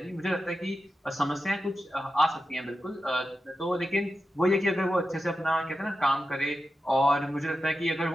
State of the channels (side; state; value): both; normal; correlation 0.91